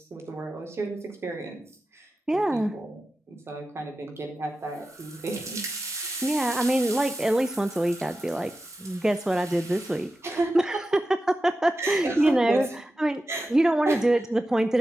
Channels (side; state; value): both; normal; correlation 0.92